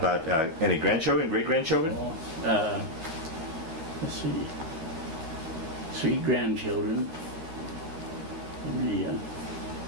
any grandchildren, great-grandchildren? Well, let's see. 3 grandchildren.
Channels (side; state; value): left; late; 12 ms